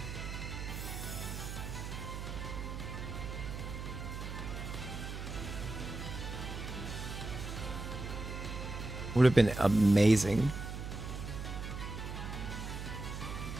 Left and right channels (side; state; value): right; noise; hum, 6 dB below the sound